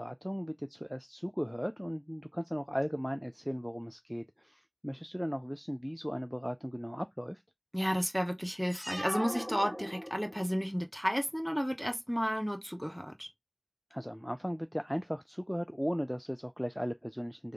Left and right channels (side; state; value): both; identical; correlation 1.00